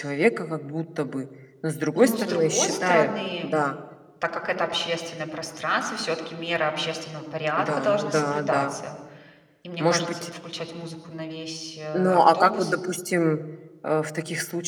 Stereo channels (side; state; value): both; identical; correlation 1.00